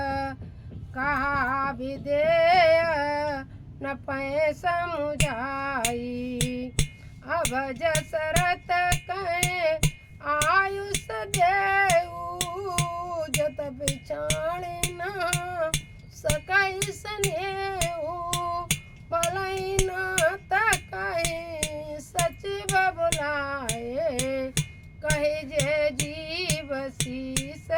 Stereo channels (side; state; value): both; identical; correlation 1.00